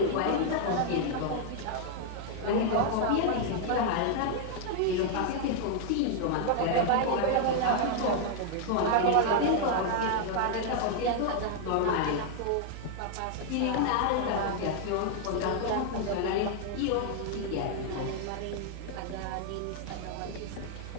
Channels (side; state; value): both; different; correlation 0.00